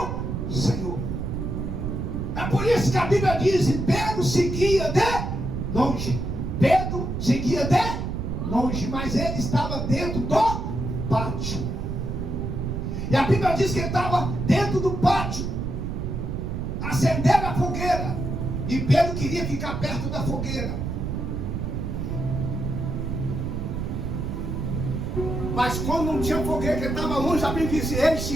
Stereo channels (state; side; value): noise; right; rumble, 3 dB below the sound